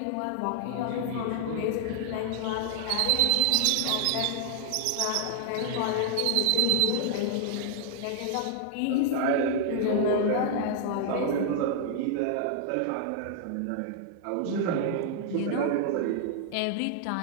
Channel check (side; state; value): both; different; correlation -0.01